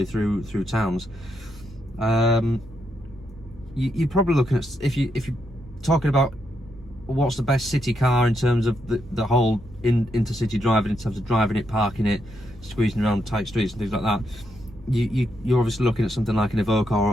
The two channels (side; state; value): both; normal; correlation 0.80